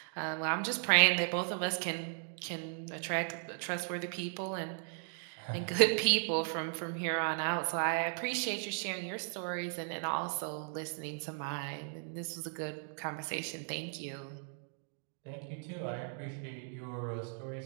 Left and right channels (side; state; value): left; silent; 54 dB below the other